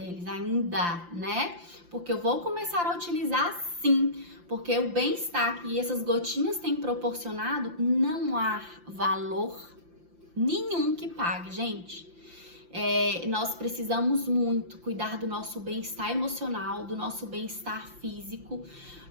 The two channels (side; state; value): left; late; 5.8 ms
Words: ainda, né? Porque eu vou começar a utilizar sim, porque o bem-estar que essas gotinhas têm proporcionado, não há valor nenhum que pague, gente. Nós precisamos muito cuidar do nosso bem-estar emocional, do nosso bem-estar físico.